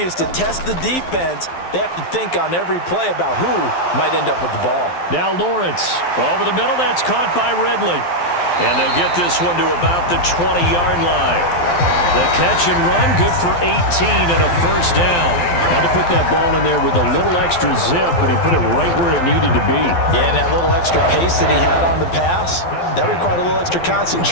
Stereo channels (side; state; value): right; late; 12 ms